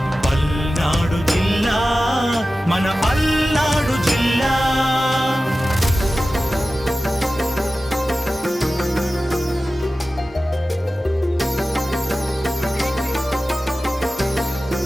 పల్నాడు జిల్లా మన పల్నాడు జిల్లా.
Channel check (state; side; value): normal; both; correlation 0.95